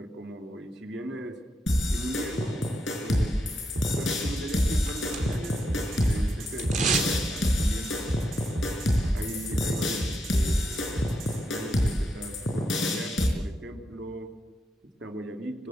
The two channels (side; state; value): both; normal; correlation 0.83